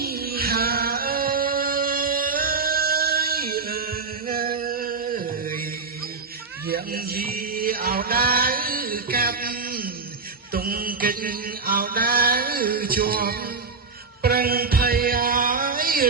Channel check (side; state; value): left; quieter; 4.5 dB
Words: ហើយយ៉ាងយីអោដៅកាប់ទុំកិច្ចអោដៅជាប់ប្រឹងភ័យឲ្យ